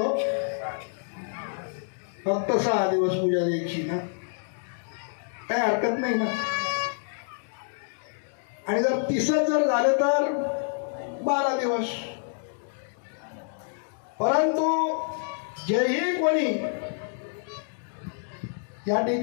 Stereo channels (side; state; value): right; silent; digital silence